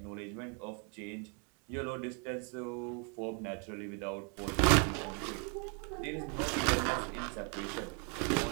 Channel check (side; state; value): left; quieter; 36.9 dB